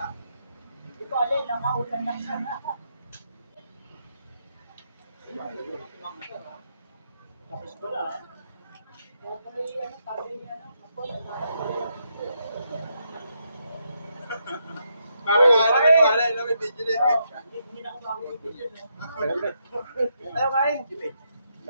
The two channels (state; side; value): inverted; both; correlation -0.80